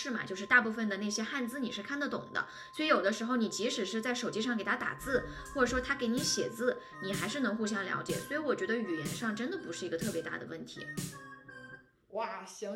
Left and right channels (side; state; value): both; identical; correlation 1.00